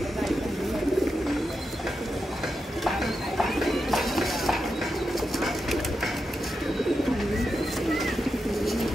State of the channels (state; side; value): normal; both; correlation 0.87